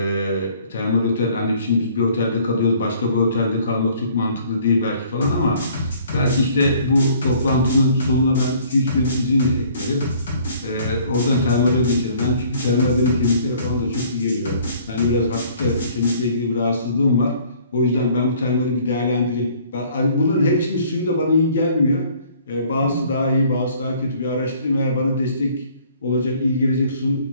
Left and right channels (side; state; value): both; inverted; correlation -0.57